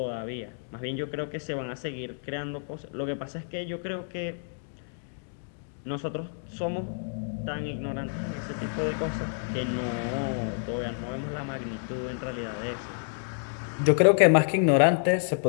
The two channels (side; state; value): right; silent; digital silence